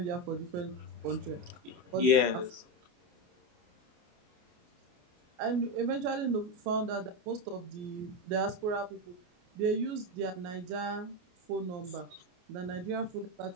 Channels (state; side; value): late; left; 28 ms